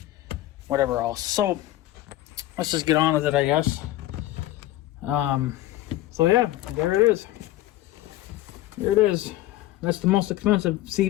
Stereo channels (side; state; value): right; quieter; 15.1 dB